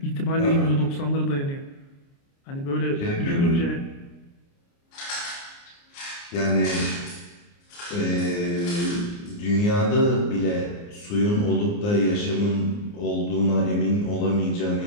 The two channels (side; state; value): right; late; 29 ms